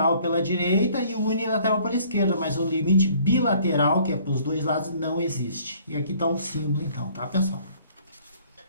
pela direita e o unilateral pela esquerda, mas o limite bilateral, que é para os dois lados, não existe. E aqui está o símbolo, então, tá, pessoal?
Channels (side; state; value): both; inverted; correlation -0.57